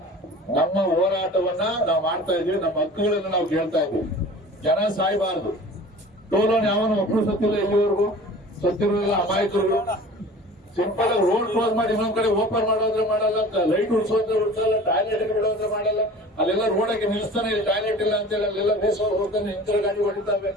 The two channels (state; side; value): normal; both; correlation 0.41